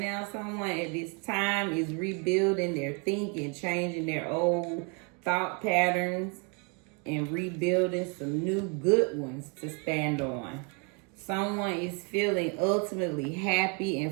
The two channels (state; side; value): quieter; left; 34.0 dB